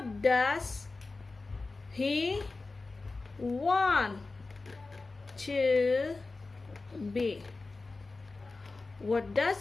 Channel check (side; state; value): right; quieter; 3.6 dB